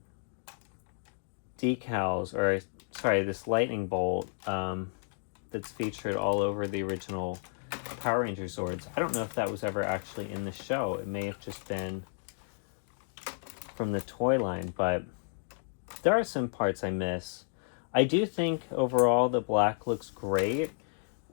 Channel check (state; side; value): silent; right; digital silence